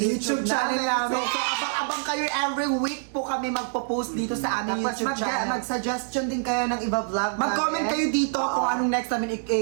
channel namin. So, So, abang-abang kayo every week po kami magpo-post dito sa aming YouTube channel. Mag-suggestion din kayo ng iba vlog. Mag-comment kayo dito kung anong next namin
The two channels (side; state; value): left; silent; digital silence